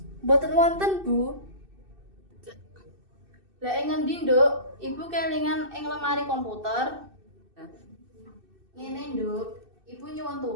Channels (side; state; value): left; late; 2.6 ms